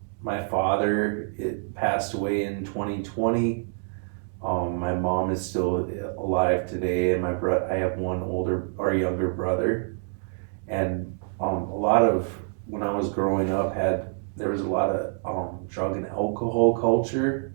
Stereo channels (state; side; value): silent; left; digital silence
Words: My father passed away in 2020. My mom is still alive today, and I have one younger brother, and a lot of when I was growing up there was a lot of drug and alcohol culture